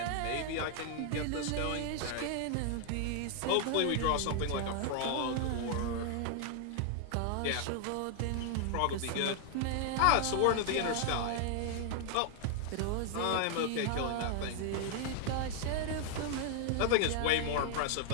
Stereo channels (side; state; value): both; different; correlation 0.00